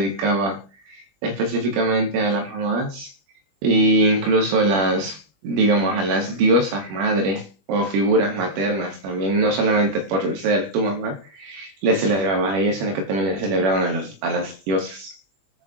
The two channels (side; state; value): left; late; 21 ms